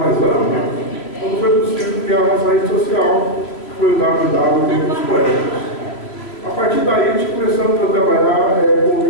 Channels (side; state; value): right; late; 3.1 ms